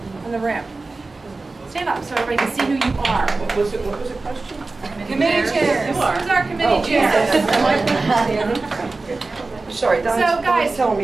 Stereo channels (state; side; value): quieter; left; 3.5 dB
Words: in the room? Stand up so everybody can see who you are. What was the question? Committee chairs. Who's our committee chairs? Sorry, so guys, telling